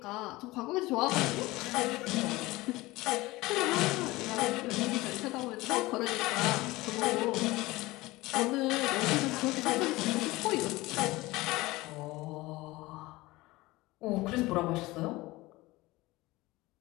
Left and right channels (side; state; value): right; quieter; 20.2 dB